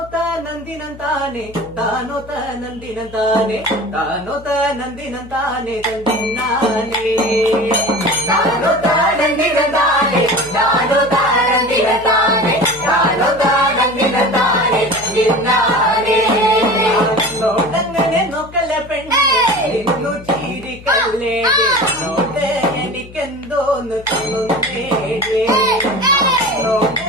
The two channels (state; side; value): noise; left; hum, 19 dB below the sound